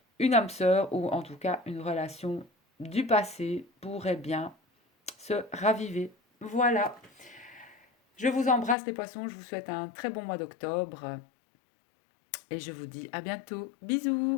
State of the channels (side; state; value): right; drops out; at 8.8 s